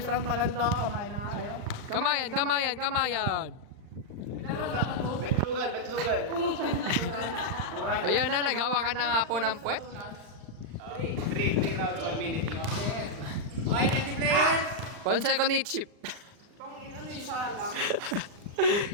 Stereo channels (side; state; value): left; late; 39 ms